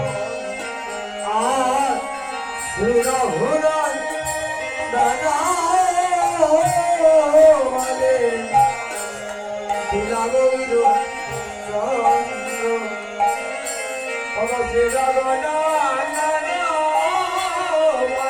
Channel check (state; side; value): identical; both; correlation 1.00